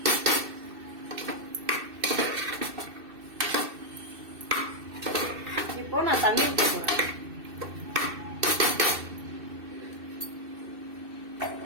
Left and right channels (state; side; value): late; left; 2.6 ms